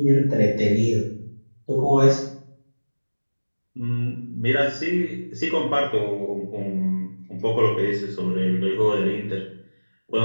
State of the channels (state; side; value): inverted; both; correlation -1.00